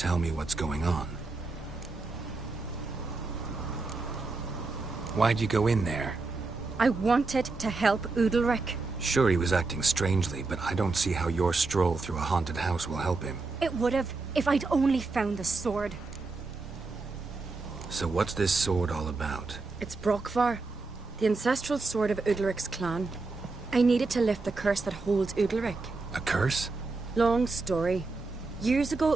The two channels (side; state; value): left; quieter; 3.7 dB